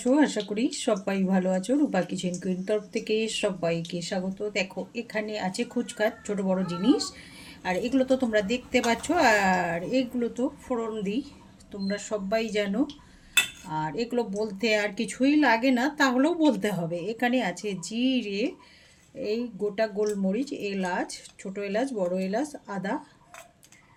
আশা করি সবাই ভালো আছো। রূপা কিচেন কুইন তরফ থেকে সবাইকে স্বাগত। দেখো, এখানে আছে খুচখাচ ছোট বড় জিনিস, আর এগুলো তো তোমরা দেখতে পাচ্ছ। আর এগুলো তো ফোড়ন দিই, তোমরা সবাই জানো। আর এগুলো বলতে আর কিছুই লাগে না, তাহলেও বলতে হবে। এখানে আছে জিরে, এই গোটা গোলমরিচ, এলাচ, ছোট এলাচ, বড় এলাচ, আদা।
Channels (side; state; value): both; identical; correlation 1.00